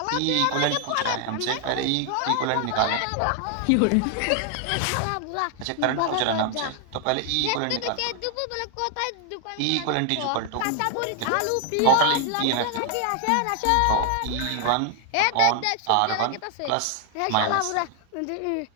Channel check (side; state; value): both; different; correlation 0.00